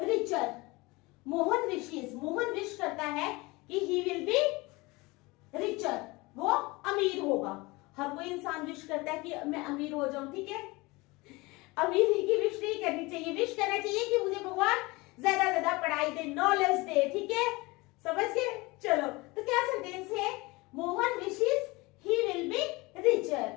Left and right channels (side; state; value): right; quieter; 23.5 dB